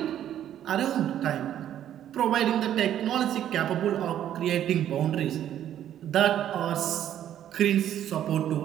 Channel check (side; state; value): left; quieter; 11.0 dB